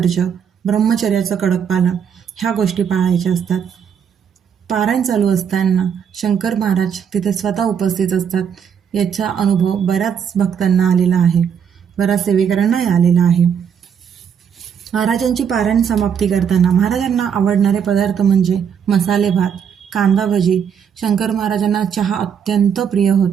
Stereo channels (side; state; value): left; quieter; 7.7 dB